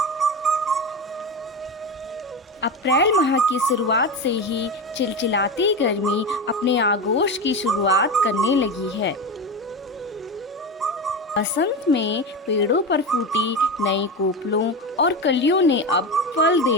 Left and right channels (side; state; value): both; normal; correlation 0.21